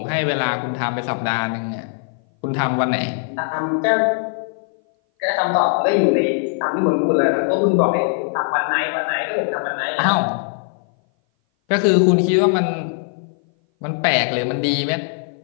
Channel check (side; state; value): right; silent; 58 dB below the other